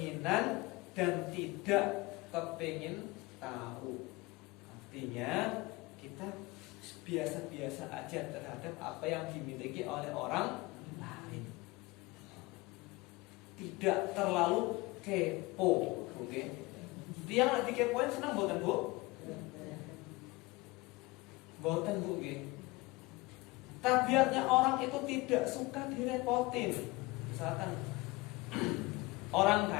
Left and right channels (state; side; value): quieter; right; 22.6 dB